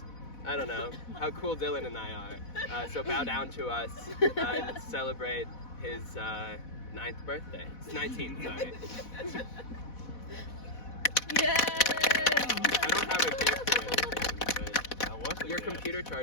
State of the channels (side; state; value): right; late; 4.1 ms